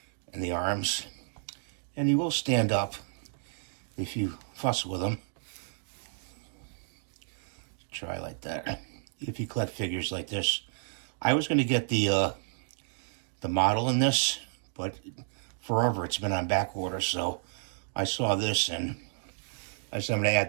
and the arms. And he will stand up if you fuss with him. Try like that. If you collect figures like this. I was going to get the model in this, but forever it's been on back order, so I saw this and I said I'm going to add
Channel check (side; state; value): left; silent; digital silence